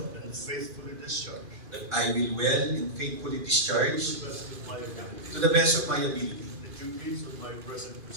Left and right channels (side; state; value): left; late; 2.5 ms